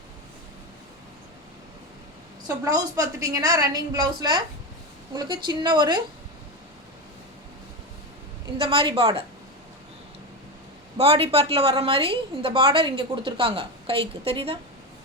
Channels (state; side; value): normal; both; correlation 0.16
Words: ஸோ ப்ளவுஸ் பார்த்துட்டிங்கன்னா ரன்னிங் ப்ளவுஸில் உங்களுக்கு சின்ன ஒரு இந்த மாதிரி பார்டர், பாடி பார்ட்டில் வர்ற மாதிரி இந்த பார்டர் இங்கே கொடுத்துருக்காங்க கைக்கு, தெரியுதா?